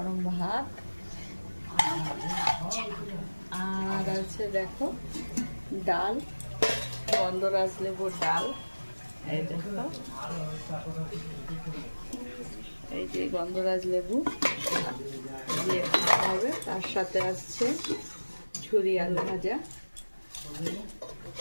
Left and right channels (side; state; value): both; inverted; correlation -1.00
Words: ভাত, আর আছে দেখো ডাল, গন্ধরাজ লেবুর ডাল। এই দেখো, এই যে গন্ধরাজ লেবু দিয়ে খাওয়া হবে। তার সাথে আসছে ঝুরি আলু ভাজা,